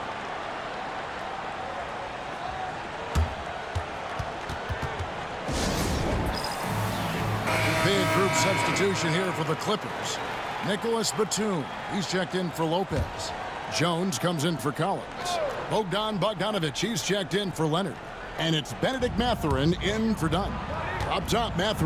Big group substitution here for the Clippers. Nicholas Batum, he's checked in for Lopez. Jones comes in for Collins. Bogdan Bogdanovic, he's checked in for Leonard. And it's Benedict Mathurin in for Dunn. Up top,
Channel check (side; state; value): both; identical; correlation 1.00